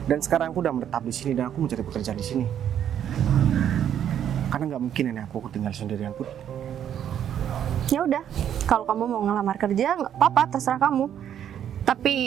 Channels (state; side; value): quieter; left; 9.8 dB